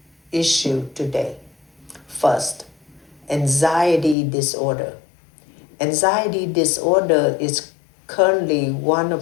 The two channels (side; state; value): right; drops out; at 4.2 s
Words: issues today. First, anxiety disorder. Anxiety disorder is currently one